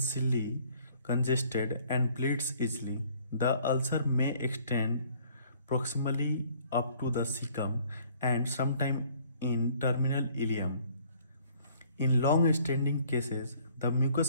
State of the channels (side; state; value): both; inverted; correlation -0.58